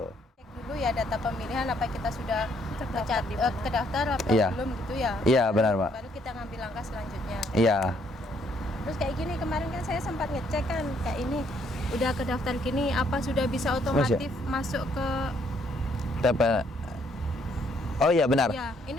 Cek dulu ya data pemilihan, apa kita sudah kedaftar apa Iya. belum gitu ya. Iya, benar, Mbak. Baru kita ngambil langkah selanjutnya. Iya. Terus kayak gini, kemarin kan saya sempat ngecek kan kayak ini udah kedaftar gini, apa sudah bisa otomatis masuk ke Oh iya, benar. ya,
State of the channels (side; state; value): both; normal; correlation 0.68